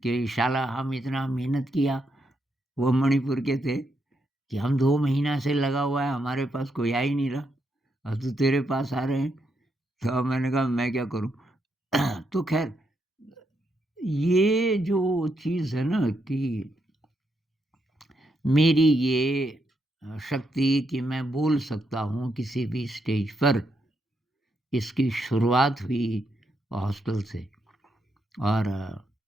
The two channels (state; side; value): normal; both; correlation 0.80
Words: कि शाला हम इतना मेहनत किया, वो मणिपुर के थे, कि हम 2 महीना से लगा हुआ है, हमारे पास कोई आ ही नहीं रहा और तू तेरे पास आ रहे हैं। तो मैंने कहा, मैं क्या करूँ? तो ख़ैर ये जो चीज़ है ना कि मेरी ये शक्ति कि मैं बोल सकता हूँ किसी भी स्टेज पर, इसकी शुरुआत हुई हॉस्टल से। और